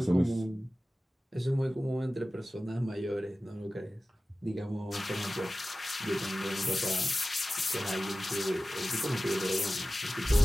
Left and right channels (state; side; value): normal; both; correlation 0.96